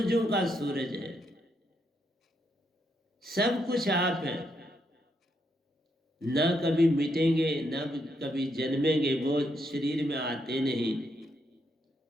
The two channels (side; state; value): both; normal; correlation 0.78